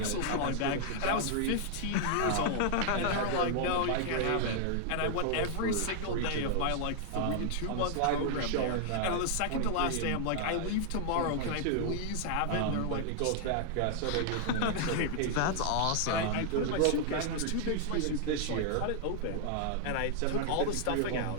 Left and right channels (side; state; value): both; different; correlation 0.00